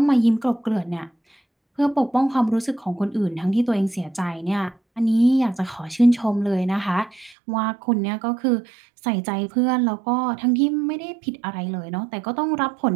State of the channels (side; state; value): left; drops out; at 7.4 s